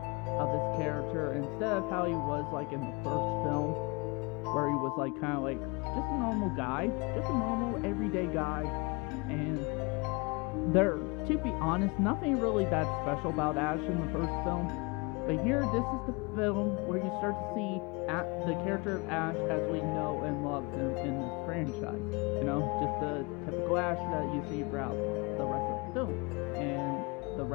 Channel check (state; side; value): quieter; right; 28.4 dB